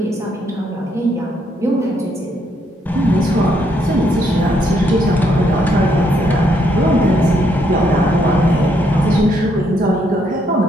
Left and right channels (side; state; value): both; normal; correlation 0.73